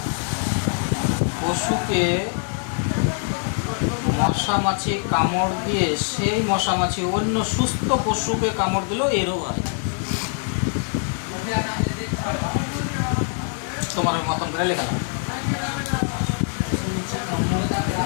পশুকে মশামাছি কামড় দিয়ে সেই মশামাছি অন্য সুস্থ পশুকে কামড় দিলেও এই রোগ হয়। তোমার মতন করে লেখা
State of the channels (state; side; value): silent; right; 56 dB below the other